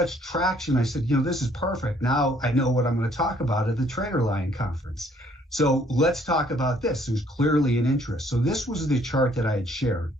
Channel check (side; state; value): both; normal; correlation 0.63